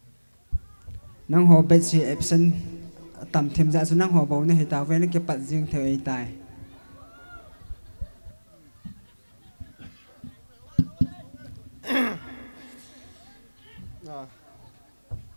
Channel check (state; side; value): inverted; both; correlation -1.00